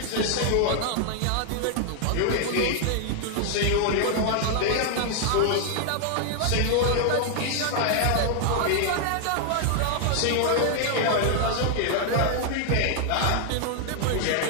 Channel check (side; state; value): both; different; correlation 0.00